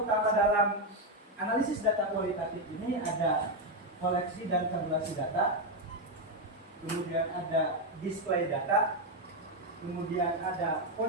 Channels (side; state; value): both; normal; correlation 0.05